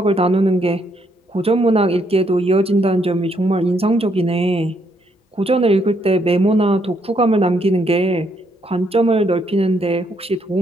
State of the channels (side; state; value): both; normal; correlation 0.73